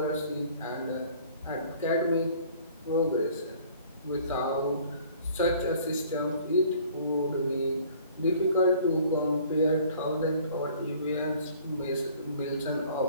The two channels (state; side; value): inverted; both; correlation -0.53